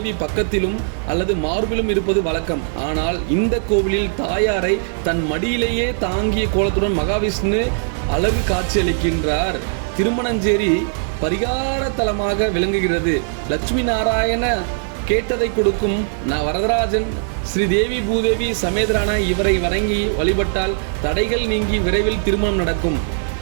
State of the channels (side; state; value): left; silent; digital silence